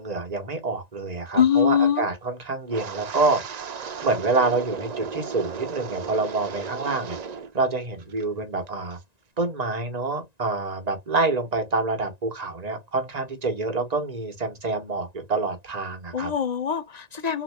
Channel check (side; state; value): left; late; 1.9 ms